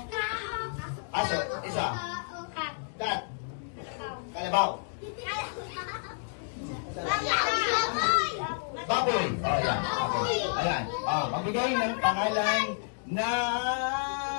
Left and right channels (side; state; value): right; silent; digital silence